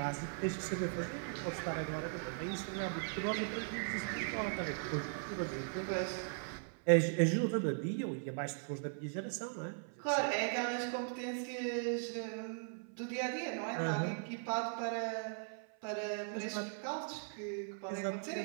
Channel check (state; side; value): silent; left; 52 dB below the other